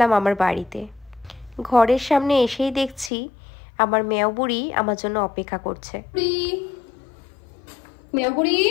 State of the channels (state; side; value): drops out; right; at 3.1 s